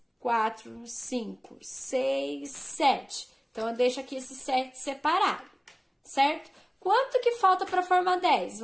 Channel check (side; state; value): both; identical; correlation 1.00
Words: 4, 5, 6, 7. Então, eu deixo aqui esse 7 separado, certo? Quanto que falta para formar 10?